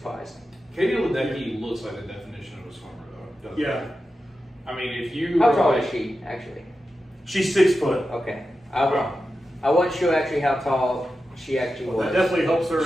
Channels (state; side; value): normal; both; correlation 0.91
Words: Katie Ledecky looks like the definition of a swimmer, though. doesn't Yeah. she? I mean, if you How tall is she, actually? She's 6 foot. Okay. I wasn't sure actually how tall she actually That was. definitely helps her.